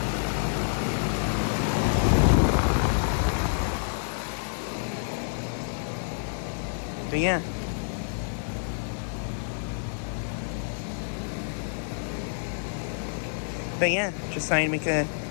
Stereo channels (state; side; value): silent; right; 59 dB below the other